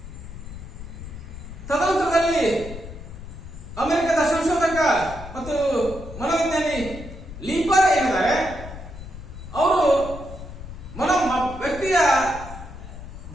ತದನಂತರದಲ್ಲಿ ಅಮೆರಿಕದ ಸಂಶೋಧಕ ಮತ್ತು ಮನೋವಿಜ್ಞಾನಿ ಲೀಪರ್ ಏನಿದ್ದಾರೆ, ಅವರು ವ್ಯಕ್ತಿಯ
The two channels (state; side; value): noise; left; rumble, 12 dB below the sound